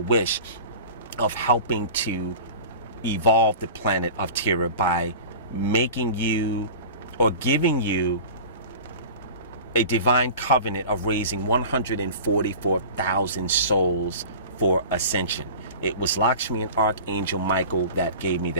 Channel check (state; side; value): inverted; both; correlation -0.37